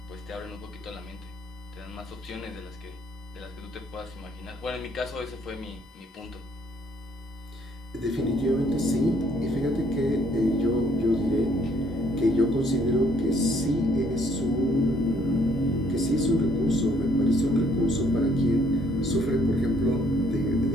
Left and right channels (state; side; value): normal; both; correlation 0.65